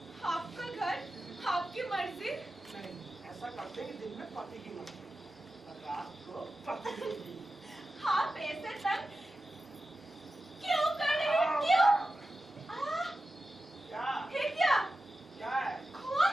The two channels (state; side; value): normal; both; correlation 0.92